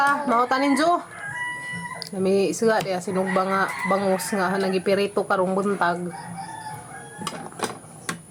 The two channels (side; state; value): both; identical; correlation 1.00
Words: mahutanin jo nami suga dia sinugba nga bangus nga nagipirito karong buntag